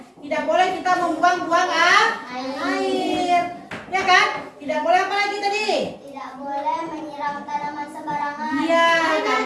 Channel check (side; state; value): both; identical; correlation 1.00